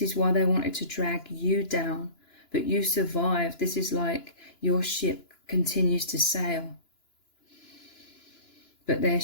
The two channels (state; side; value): late; right; 2.9 ms